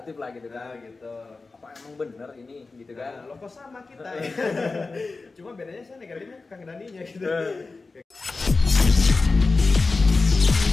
lah gitu kan. Nah, gitu. Apa emang bener ini gitu kan? Nah, lo kok sama kita ya. Cuma bedanya saya negatifnya Kang Daninya gitu.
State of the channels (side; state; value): right; quieter; 3.8 dB